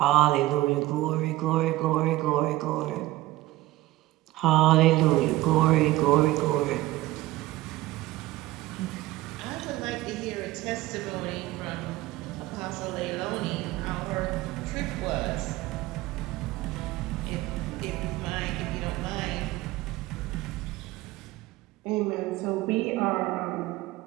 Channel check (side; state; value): left; quieter; 17.2 dB